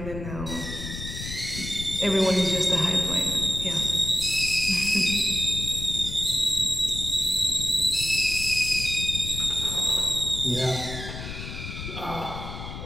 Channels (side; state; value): left; noise; rumble, 9 dB below the sound